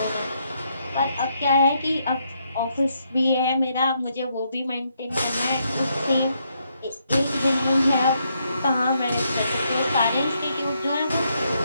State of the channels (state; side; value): inverted; both; correlation -0.76